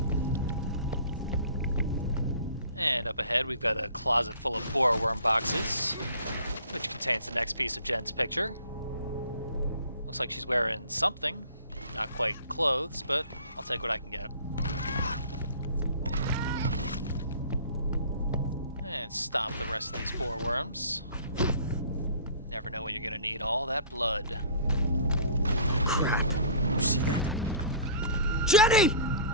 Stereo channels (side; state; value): both; inverted; correlation -0.47